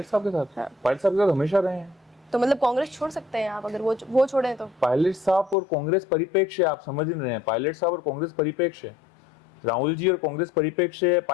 साहब के साथ? पायलट साहब के साथ हमेशा रहे हैं। तो मतलब कांग्रेस छोड़ सकते हैं आप, अगर वो छोड़े तो? पायलट साहब और कांग्रेस परिप्रेक्ष्य आप समझ नहीं रहे हैं। पायलट साहब और कांग्रेस परिप्रेक्ष्य, राहुल जी और कांग्रेस परिप्रेक्ष्य,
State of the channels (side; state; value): right; drops out; at 5.6 s